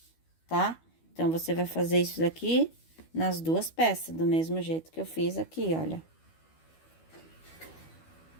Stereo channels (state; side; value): late; right; 12 ms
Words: tá? Então, você vai fazer isso daqui nas 2 peças, do mesmo jeito que eu fiz aqui, olha.